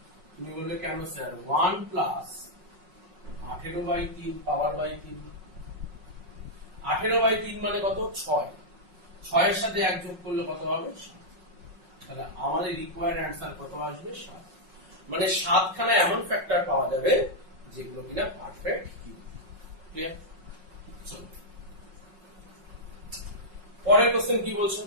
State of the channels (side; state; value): left; late; 5.5 ms